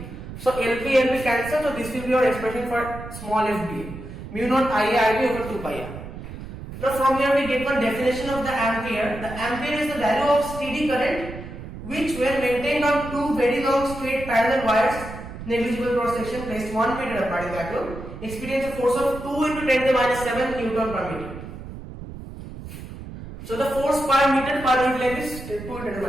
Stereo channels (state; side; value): noise; right; rumble, 12 dB below the sound